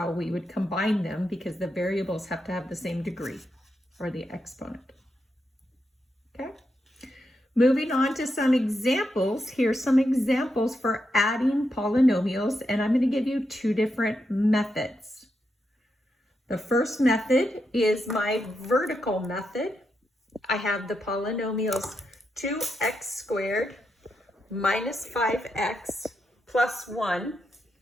we would combine them because the variables have to have the same degree, or the exponent. Okay? Moving on to some examples. Here's some examples for adding polynomials, and I'm going to give you two different methods. The first method is my vertical method. I have the polynomials 2x squared minus 5x plus 1,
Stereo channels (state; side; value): normal; both; correlation 0.84